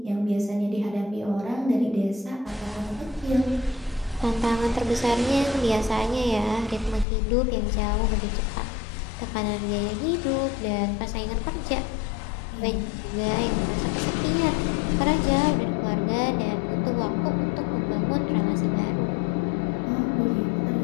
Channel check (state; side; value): drops out; right; at 7.1 s